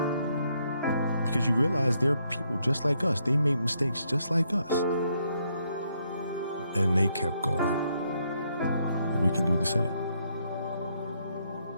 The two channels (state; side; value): inverted; both; correlation -0.75